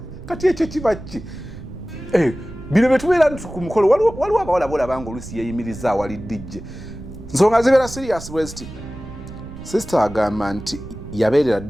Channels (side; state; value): right; noise; rumble, 14 dB below the sound